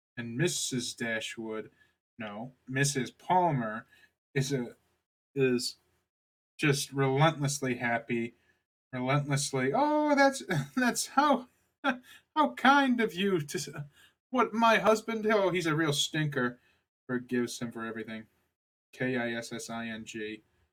And Mrs. Dashwood, no, Mrs. Palmer is just relentlessly happy, relentlessly. Oh, that's how kind of you to. What my husband? Oh, he's a real stinker. Forgives him for everything. Kissing.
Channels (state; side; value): identical; both; correlation 1.00